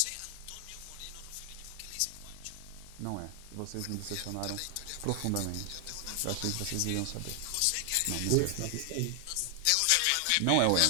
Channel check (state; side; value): different; both; correlation 0.00